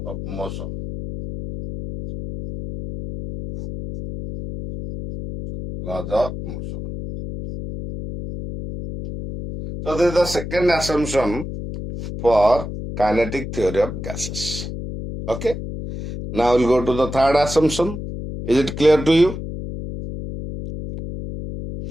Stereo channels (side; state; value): left; noise; hum, 8 dB below the sound